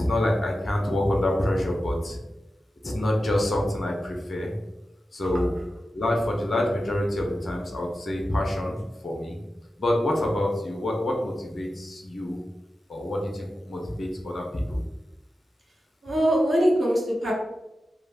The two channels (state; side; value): normal; both; correlation 0.92